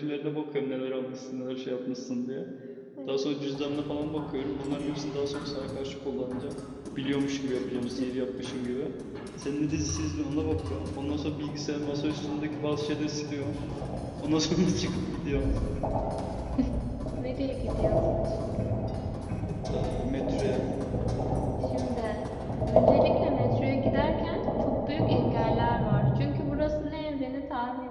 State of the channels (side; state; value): both; identical; correlation 1.00